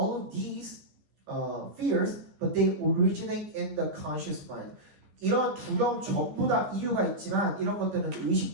of these fears, but they originate in the conscious mind. 이런 두려움 전부 다 이유가 있지만 이런 것들은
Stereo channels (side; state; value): left; late; 15 ms